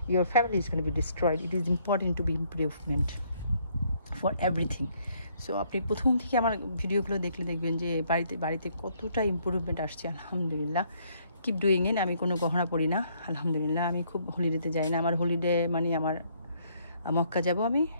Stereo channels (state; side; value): inverted; both; correlation -0.68